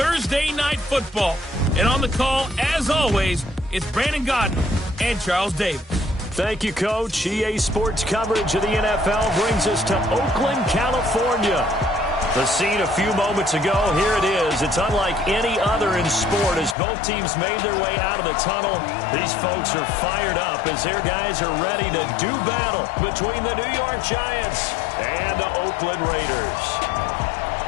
Night Football. And on the call, as always, it's Brandon Godden and Charles Davis. Thank you, Coach. EA Sports coverage of the NFL brings us to Oakland, California. The scene a few moments ago, here it is. It's unlike any other in sport as both teams made their way out of the tunnel. These folks are fired up as their guys are ready to do battle between the New York Giants and the Oakland Raiders.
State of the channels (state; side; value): drops out; right; at 16.8 s